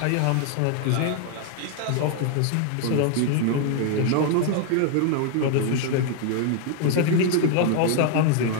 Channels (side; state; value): both; different; correlation 0.00